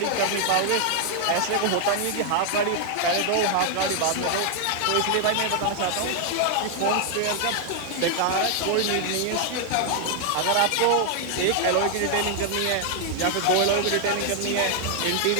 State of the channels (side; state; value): both; different; correlation 0.00